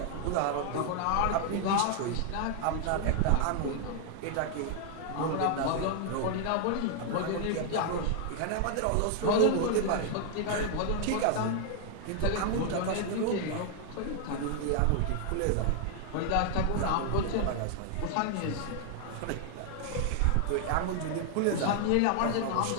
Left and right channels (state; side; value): different; both; correlation 0.00